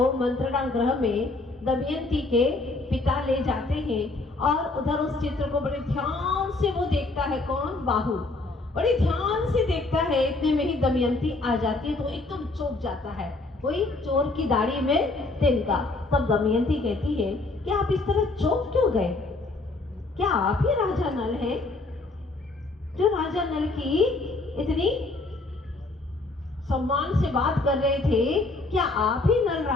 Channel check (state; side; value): quieter; right; 3.2 dB